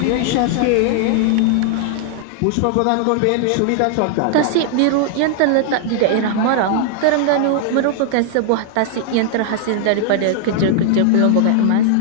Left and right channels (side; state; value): both; different; correlation 0.00